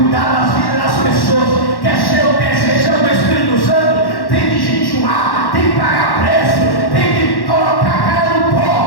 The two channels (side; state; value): right; late; 1.1 ms